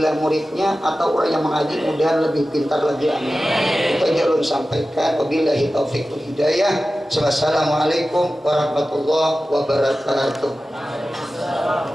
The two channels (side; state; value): both; normal; correlation 0.95